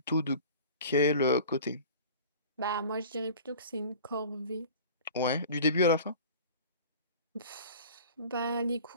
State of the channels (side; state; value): both; inverted; correlation -0.41